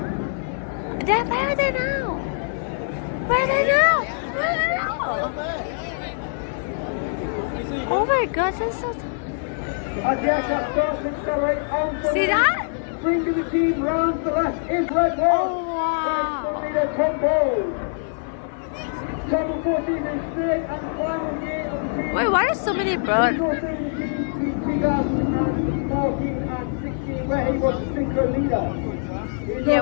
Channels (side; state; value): right; silent; 56 dB below the other